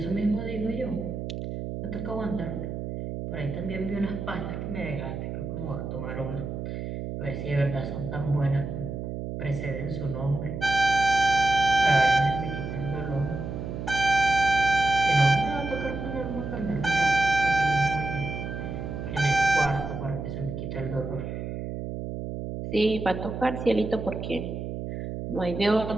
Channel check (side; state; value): right; noise; hum, 6 dB below the sound